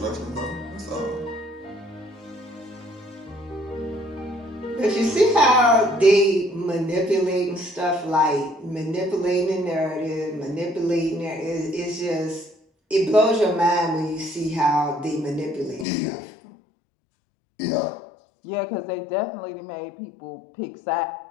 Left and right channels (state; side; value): drops out; right; at 15.9 s